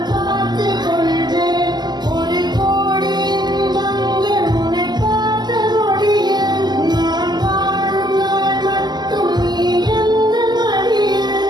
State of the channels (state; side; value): late; left; 0.21 ms